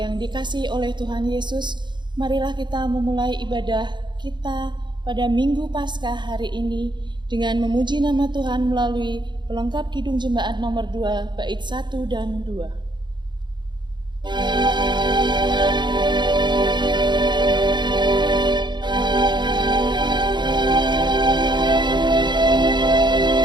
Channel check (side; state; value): left; late; 0.22 ms